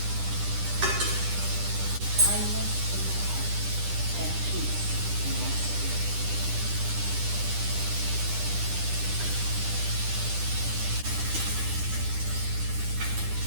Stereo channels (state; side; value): late; left; 10 ms